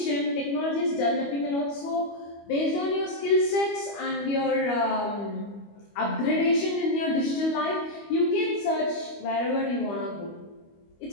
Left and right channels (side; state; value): right; late; 25 ms